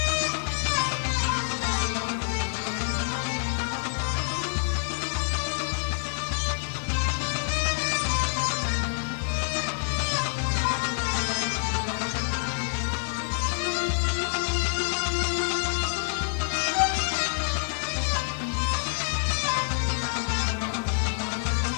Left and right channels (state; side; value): silent; right; digital silence